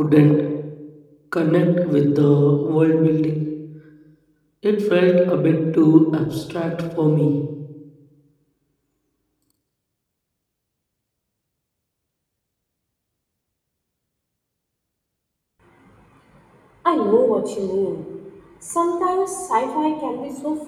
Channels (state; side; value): identical; both; correlation 1.00